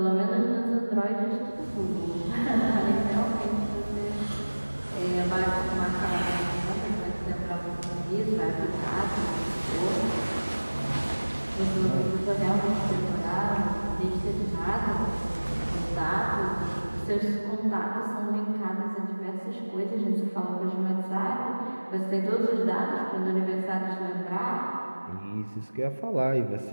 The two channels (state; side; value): inverted; both; correlation -1.00